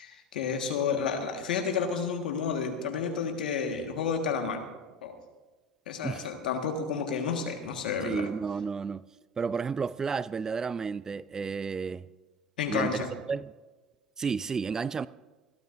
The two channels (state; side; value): normal; both; correlation 0.32